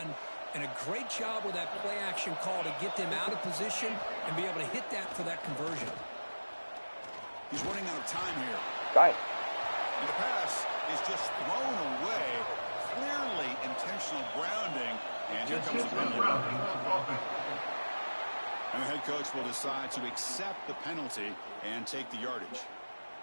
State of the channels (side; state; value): both; inverted; correlation -1.00